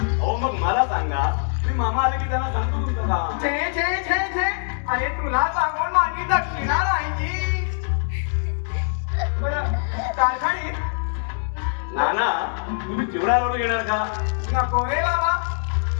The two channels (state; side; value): silent; right; digital silence